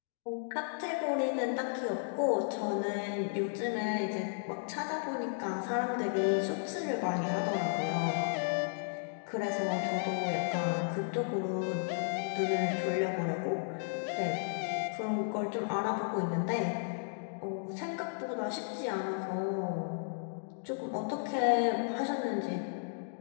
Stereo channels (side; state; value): right; silent; digital silence